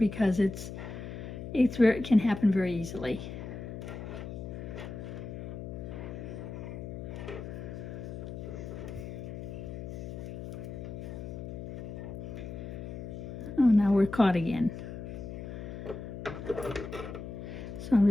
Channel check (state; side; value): noise; left; hum, 8 dB below the sound